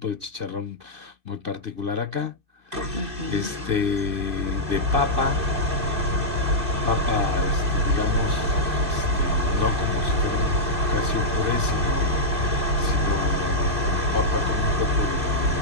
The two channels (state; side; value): late; left; 2.5 ms